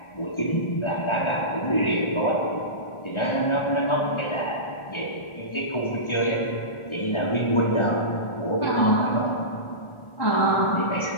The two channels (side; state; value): right; late; 1.4 ms